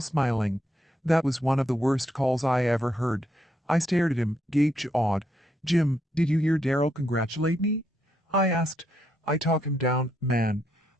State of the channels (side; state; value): both; normal; correlation 0.78